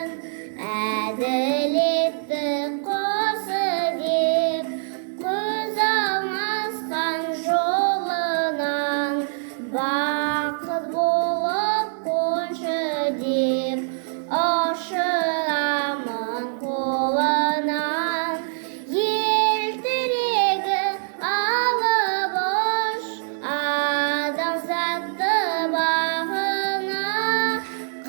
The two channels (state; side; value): silent; left; 55 dB below the other